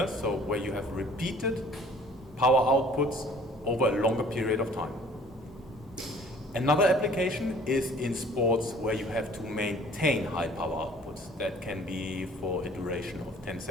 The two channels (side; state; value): both; normal; correlation 0.53